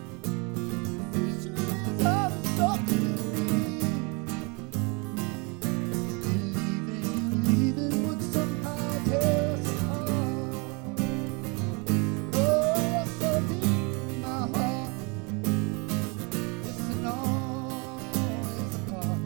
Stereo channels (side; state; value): left; quieter; 31.0 dB